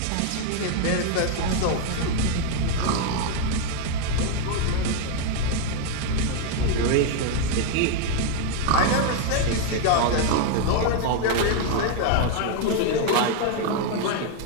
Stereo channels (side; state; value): both; different; correlation 0.01